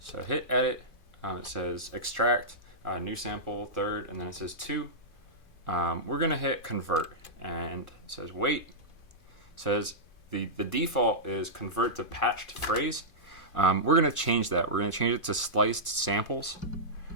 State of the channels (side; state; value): right; late; 2.5 ms